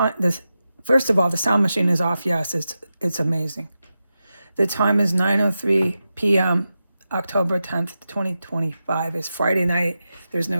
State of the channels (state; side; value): inverted; both; correlation -0.91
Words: this First of all, the sound machine is off. Yes, it's amazing. The time is 9:03 p.m. October 10th, 2025. It's Friday night. There's